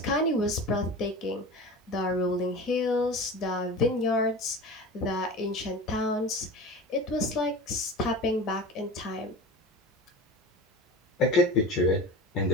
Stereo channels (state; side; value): normal; both; correlation 0.33